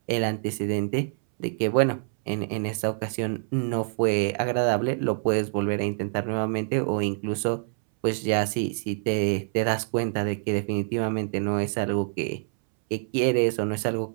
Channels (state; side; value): silent; left; 61 dB below the other